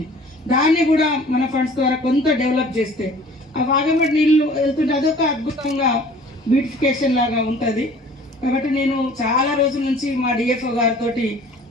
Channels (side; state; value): both; normal; correlation 0.49